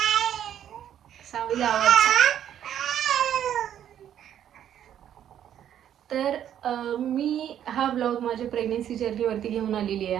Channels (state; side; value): quieter; left; 10.3 dB